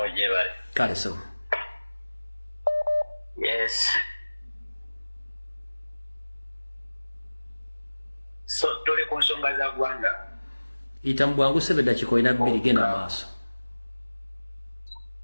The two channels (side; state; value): both; inverted; correlation -1.00